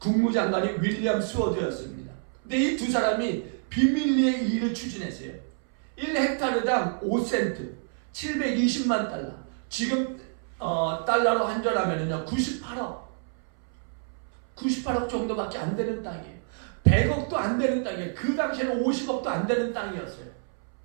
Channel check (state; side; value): silent; left; 60 dB below the other